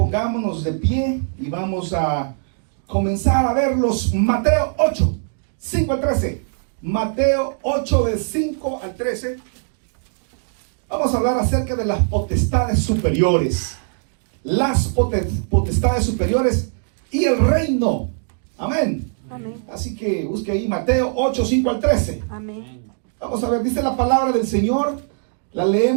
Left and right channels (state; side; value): silent; left; digital silence